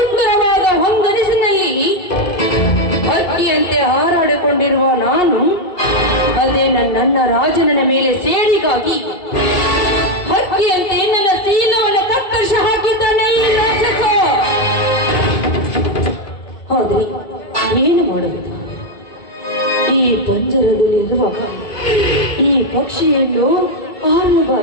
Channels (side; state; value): right; late; 2.7 ms